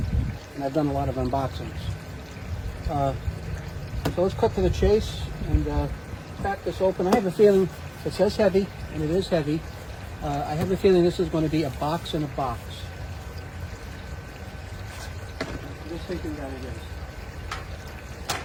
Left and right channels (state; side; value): identical; both; correlation 1.00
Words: and I've done a lot of unboxings. So let's cut to the chase and crack this open. I have a feeling it says heavy, and it is heavy. I have a feeling this is going to be a box in a box. I'm just thinking that it is.